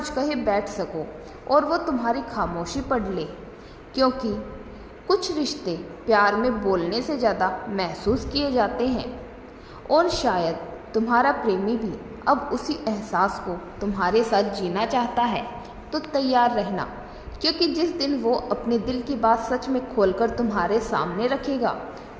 कहे बैठ सको और वो तुम्हारी खामोशी पढ़ ले, क्योंकि कुछ रिश्ते प्यार में बोलने से ज़्यादा महसूस किए जाते हैं। और शायद तुम्हारा प्रेमी भी अब उसी एहसास को तुम्हारे साथ जीना चाहता है। तो तैयार रहना, क्योंकि जिस दिन वो अपने दिल की बात सच में खोलकर तुम्हारे सामने रखेगा,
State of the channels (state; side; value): identical; both; correlation 1.00